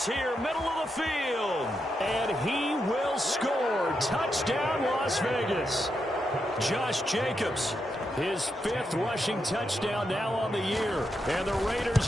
here, middle of the field. And he will score. Touchdown, Las Vegas. Josh Jacobs, his 5th rushing touchdown now on the year. And the Raiders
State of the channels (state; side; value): normal; both; correlation 0.84